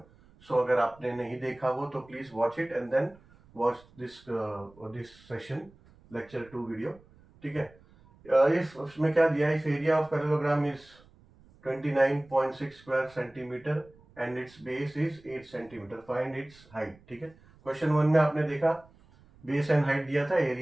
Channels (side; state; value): right; noise; rumble, 27 dB below the sound